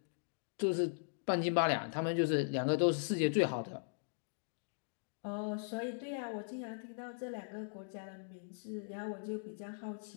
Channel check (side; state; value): right; silent; digital silence